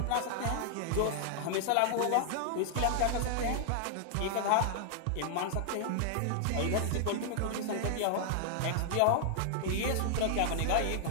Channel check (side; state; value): both; different; correlation 0.00